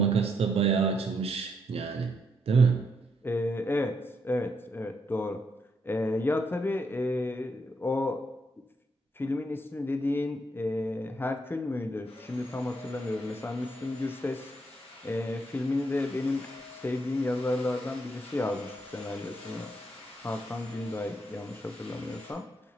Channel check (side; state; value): both; normal; correlation 0.77